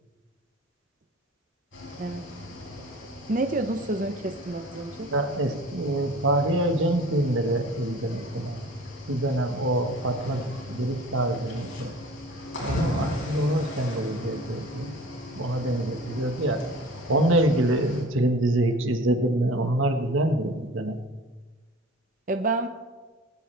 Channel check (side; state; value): both; normal; correlation 0.43